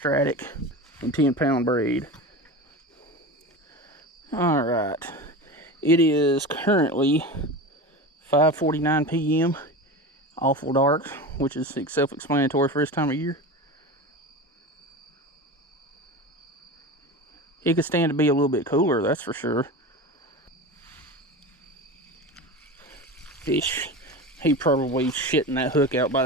and 10-pound braid. Alright, It is currently 5:49 p.m. Awful dark, which is self-explanatory for this time of year. It could stand to be a little bit cooler, that's for sure. Fish, he probably shitting that hook out by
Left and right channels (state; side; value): normal; both; correlation 0.28